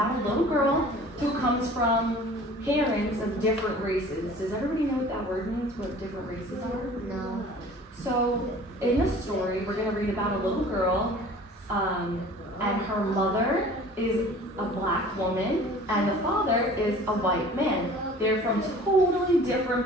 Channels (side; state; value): both; normal; correlation 0.46